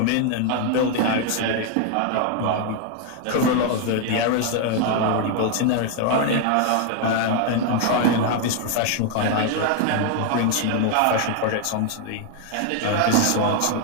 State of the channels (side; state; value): both; different; correlation 0.00